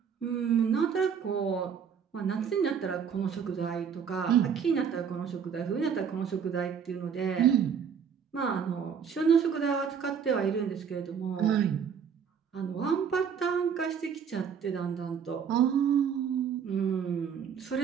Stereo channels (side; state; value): left; quieter; 7.2 dB